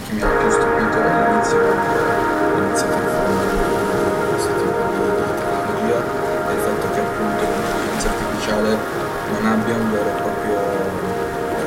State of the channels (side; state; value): both; identical; correlation 1.00